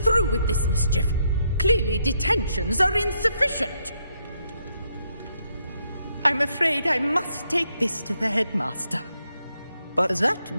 with this mischief. Clearly detentions are insufficient. I'm afraid I must take this to the headmaster. But that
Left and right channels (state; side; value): inverted; both; correlation -0.77